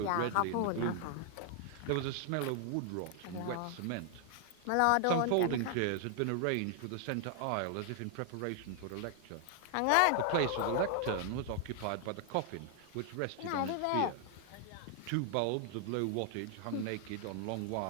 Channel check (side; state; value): both; different; correlation 0.00